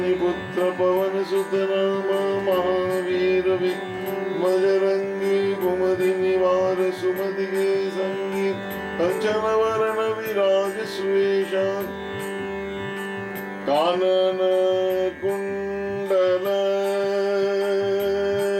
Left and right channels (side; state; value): both; identical; correlation 1.00